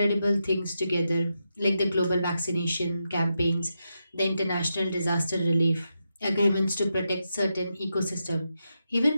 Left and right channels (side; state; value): both; inverted; correlation -0.86